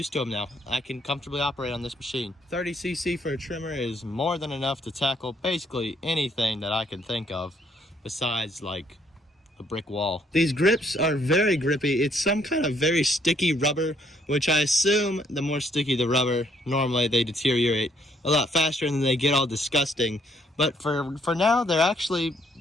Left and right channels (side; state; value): both; normal; correlation 0.68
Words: to them now. I can comfortably operate on this machine. 30cc for a trimmer is more than enough to tackle basically anything that I can think of besides like a brick wall. These grips are very grippy. It's some kind of very sticky rubber, which I assume the more sticky the rubber, normally they deteriorate a lot faster and then they get all disgusting. But for now, they're actually